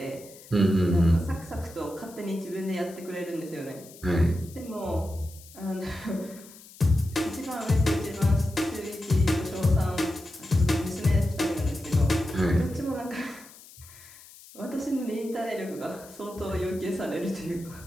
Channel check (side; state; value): left; noise; hiss, 20 dB below the sound